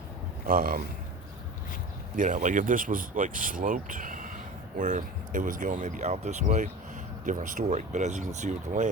like if this was like sloped, where it was going maybe out this way, different story. But as you can see with the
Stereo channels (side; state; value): both; normal; correlation 0.33